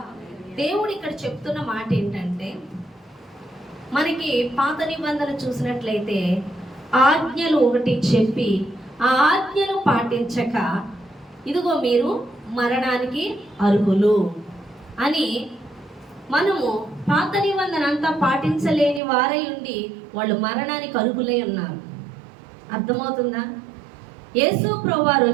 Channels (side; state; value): left; drops out; at 19.0 s